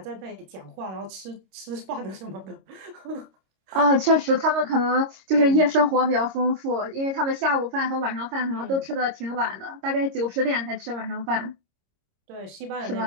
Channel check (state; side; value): late; left; 26 ms